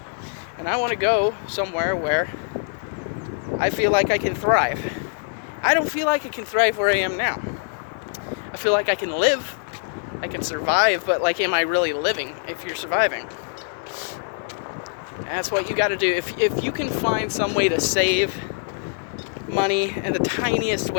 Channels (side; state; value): right; silent; digital silence